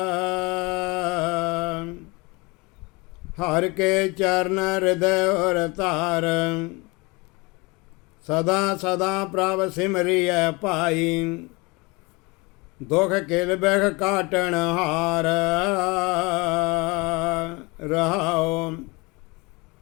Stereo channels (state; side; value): quieter; right; 26.4 dB